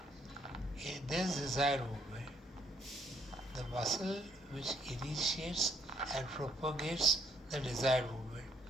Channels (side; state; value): both; normal; correlation 0.69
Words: In this desired movement, the muscle which initiates and propagates the desired movement